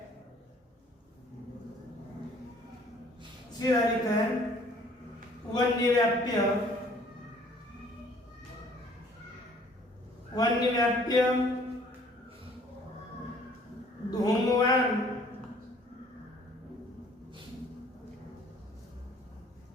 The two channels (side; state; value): both; normal; correlation 0.57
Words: सीधा लिखते हैं वन्यव्याप्य। वन्यव्याप्य धूमवान